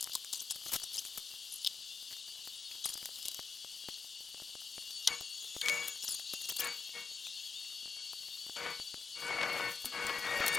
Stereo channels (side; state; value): right; quieter; 5.0 dB